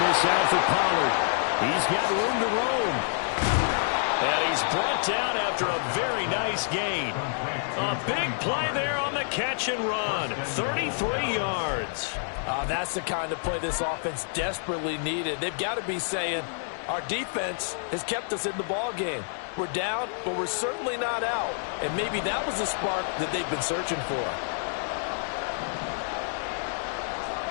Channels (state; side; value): silent; right; 59 dB below the other